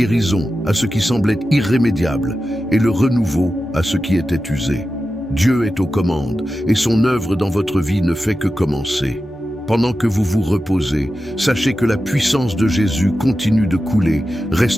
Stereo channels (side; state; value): both; normal; correlation 0.92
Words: à ce qui semblait irrémédiable et le renouveau à ce qui était usé. Dieu est aux commandes et son œuvre dans votre vie ne fait que commencer. Pendant que vous vous reposez, sachez que la puissance de Jésus continue de couler,